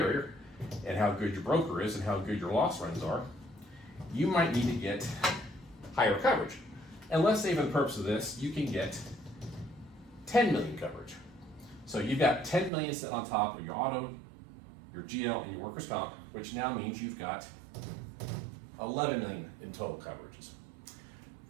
and how good your broker is and how good your loss runs are, you might need to get higher coverage. And let's say for the purpose of this, you can get 10 million coverage. So you've got 10 million sitting on top of your auto, your GL, and your workers' comp, which now means you've got 11 million in total coverages.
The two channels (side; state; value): left; drops out; at 12.7 s